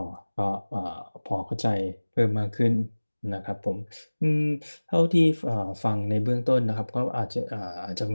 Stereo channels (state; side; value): inverted; both; correlation -1.00